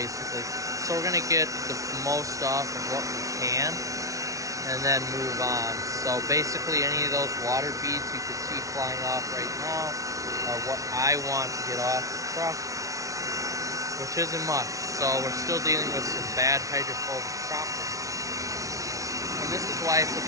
So we're going to get the most off of what we can and then move on. So basically any of those water beads you can see flying off right now are what I want to get off the truck, which isn't much. So we're still dealing with some bad hydrophobic properties. And this is why it's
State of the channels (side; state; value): left; late; 0.16 ms